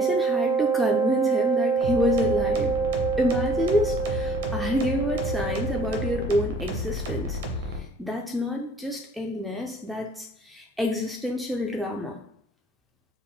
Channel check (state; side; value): normal; both; correlation 0.54